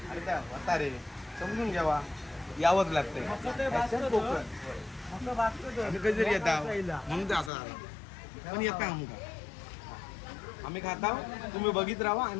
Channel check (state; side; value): drops out; right; at 7.5 s